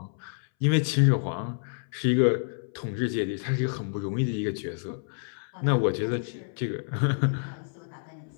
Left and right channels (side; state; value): right; silent; 59 dB below the other